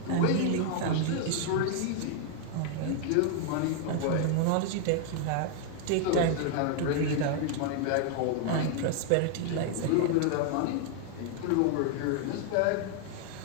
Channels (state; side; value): different; both; correlation 0.00